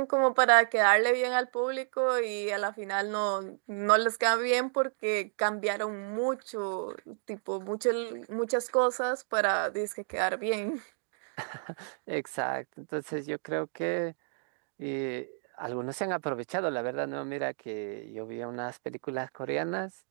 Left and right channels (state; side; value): silent; left; 57 dB below the other